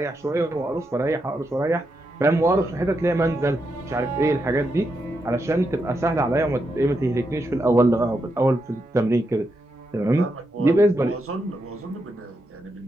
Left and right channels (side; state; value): both; normal; correlation 0.84